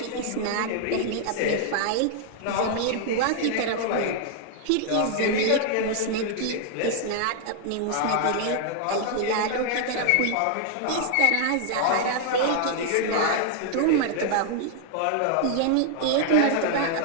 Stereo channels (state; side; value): different; both; correlation 0.00